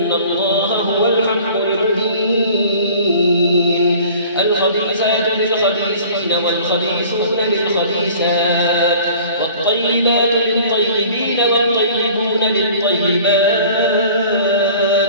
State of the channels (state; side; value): inverted; both; correlation -0.47